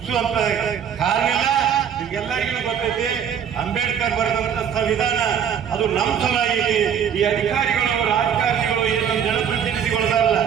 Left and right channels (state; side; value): quieter; left; 8.3 dB